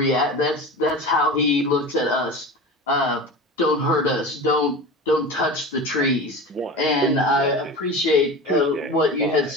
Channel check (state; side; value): normal; both; correlation 0.31